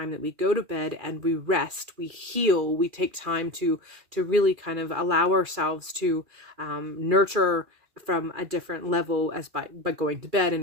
that we go to bed and we rest, we heal, we take time to really kind of allow ourselves to nurture from a different level as by going to bed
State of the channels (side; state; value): left; late; 2.4 ms